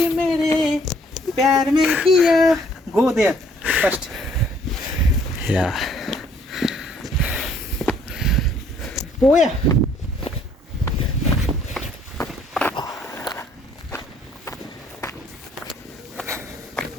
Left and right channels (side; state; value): both; normal; correlation 0.62